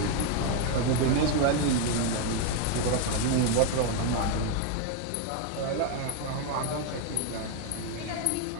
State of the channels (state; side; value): different; both; correlation 0.01